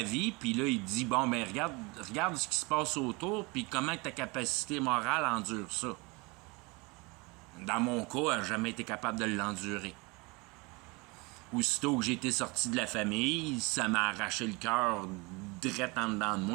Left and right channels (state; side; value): quieter; left; 26.8 dB